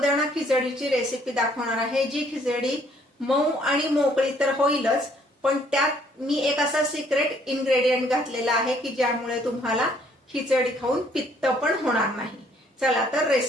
खिचडीची रेसिपी दाखवणार आहे, जी खिचडी मऊ आणि मोकळी तर होईलच, पण त्यात मी एक असा सिक्रेट इन्ग्रेडियंट घातलेला आहे की ज्यामुळे तुम्हाला खिचडी खाऊन पित्त पण होणार नाही। चला तर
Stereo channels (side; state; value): both; normal; correlation 0.64